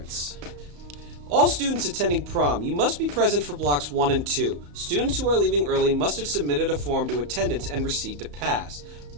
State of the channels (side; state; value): left; late; 34 ms